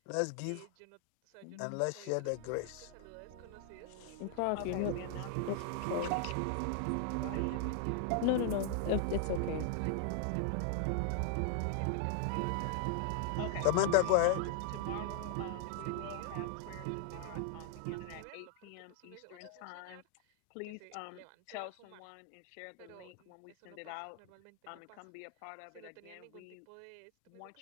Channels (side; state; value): both; different; correlation 0.00